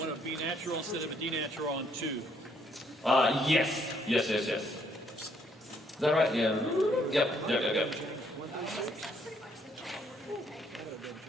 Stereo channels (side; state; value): both; normal; correlation 0.69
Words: a B natural instead of a D natural on 2. Yes. Is that right? Yeah. Yep.